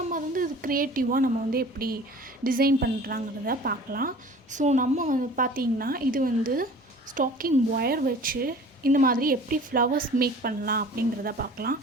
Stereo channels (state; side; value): normal; both; correlation 0.44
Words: அது வந்து இது க்ரியேட்டிவாக நம்ம வந்து எப்படி டிசைன் பண்ணுறாங்கிறத பார்க்கலாம். ஸோ நம்ம வந்து பார்த்திங்கன்னா, இது வந்து ஸ்டாக்கிங் ஒயர் வச்சு இந்த மாதிரி எப்படி ஃப்ளவர்ஸ் மேக் பண்ணலாம் அப்படிங்கிறத பார்க்கலாம்.